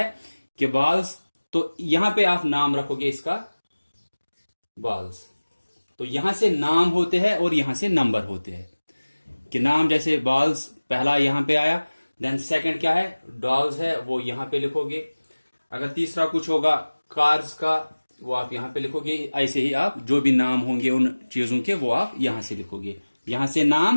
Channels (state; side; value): inverted; both; correlation -1.00